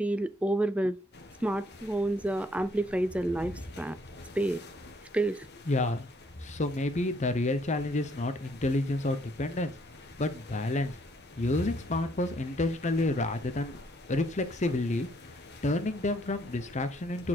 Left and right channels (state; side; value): normal; both; correlation 0.68